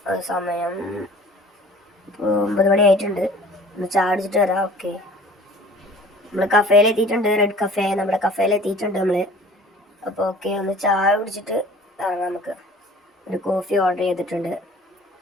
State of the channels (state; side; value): normal; both; correlation 0.48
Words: സമയം ഇപ്പോൾ 9 മണി ആയിട്ടുണ്ട്. ഒന്ന് ചായ കുടിച്ചിട്ട് വരാം. ഓക്കെ, നമ്മൾ കഫേയിലെത്തിയിട്ടുണ്ട്. റെഡ് കഫേ, നമ്മുടെ കഫേയിലെത്തിയിട്ടുണ്ട് നമ്മൾ. അപ്പോൾ ഓക്കെ, ഒന്ന് ചായ കുടിച്ചിട്ട് ഇറങ്ങാം. നമുക്ക് ഒരു കോഫി ഓർഡർ ചെയ്തിട്ടുണ്ട്.